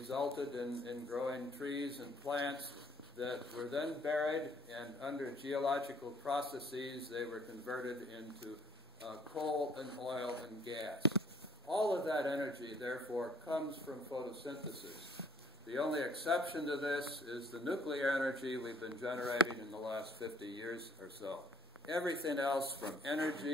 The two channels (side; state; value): both; normal; correlation 0.59